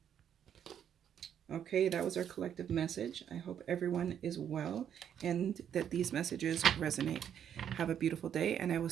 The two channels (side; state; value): left; quieter; 9.1 dB